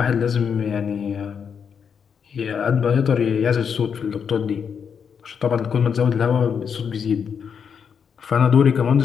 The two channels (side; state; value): right; quieter; 6.9 dB